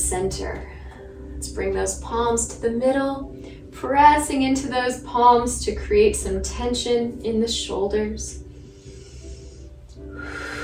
Let's bring those palms to the middle, pressing into those palms to create some tension in the shoulders.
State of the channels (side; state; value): both; identical; correlation 1.00